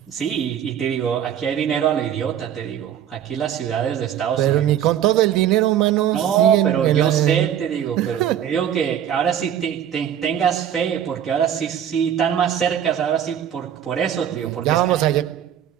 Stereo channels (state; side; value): quieter; left; 9.8 dB